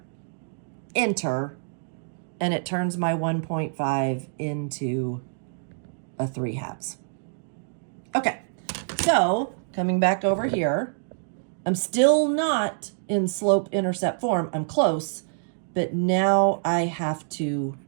enter, and it turns my 1.5 into a 3/2. Okay, so coming back over here, I'm still not in slope intercept form. I'm close, but now I have to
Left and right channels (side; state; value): left; silent; digital silence